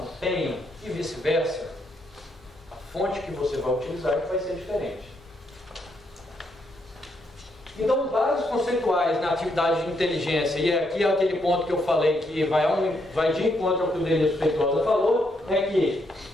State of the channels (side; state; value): both; normal; correlation 0.76